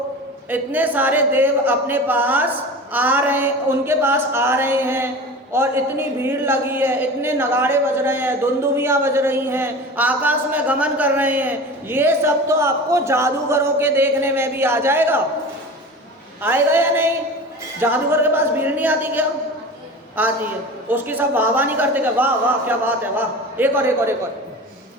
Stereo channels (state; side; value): normal; both; correlation 0.34